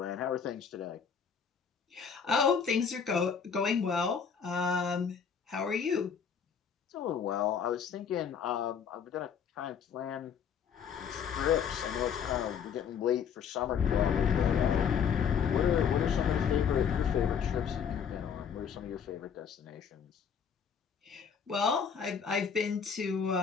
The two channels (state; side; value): quieter; right; 7.1 dB